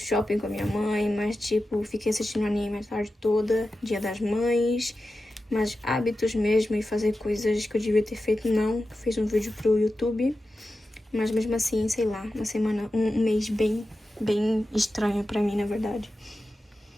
com a minha mãe, mas, tipo, fiquei assistindo anime a tarde toda, Dia das Mães. Mas hábitos mesmo e fazer coisas que eu devia ter feito, não. Fiz um vídeo pro YouTube, mas mesmo assim, sei lá, uma semana, um mês bem estranho pra mim, na verdade.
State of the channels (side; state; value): both; normal; correlation 0.92